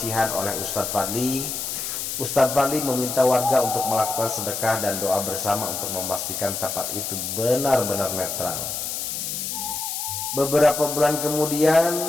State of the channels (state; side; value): noise; left; hiss, 4 dB below the sound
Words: oleh Ustadz Fadli meminta warga untuk melakukan sedekah dan doa bersama untuk memastikan tempat itu benar-benar netral. Beberapa bulan